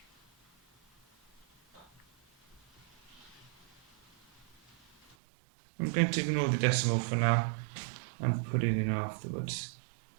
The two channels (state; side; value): drops out; left; at 5.2 s